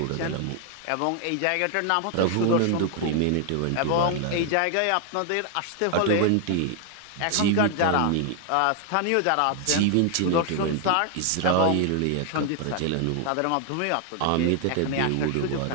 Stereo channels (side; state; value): both; different; correlation 0.00